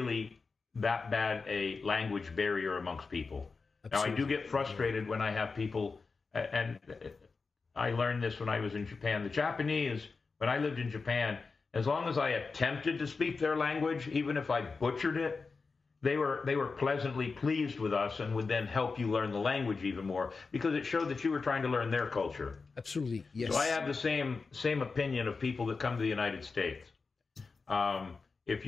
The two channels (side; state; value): right; quieter; 4.4 dB